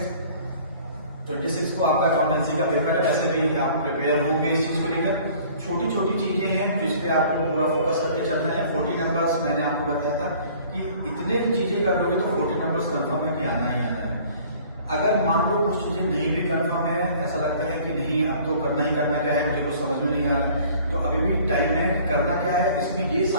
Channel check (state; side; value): inverted; both; correlation -0.51